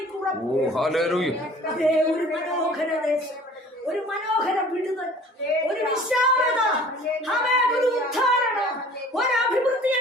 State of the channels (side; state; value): both; normal; correlation 0.48